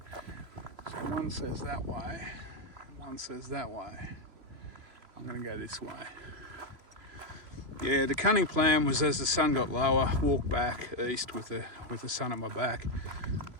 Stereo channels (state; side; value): late; left; 3.0 ms